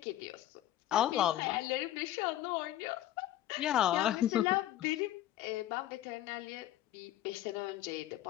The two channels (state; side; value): quieter; right; 13.4 dB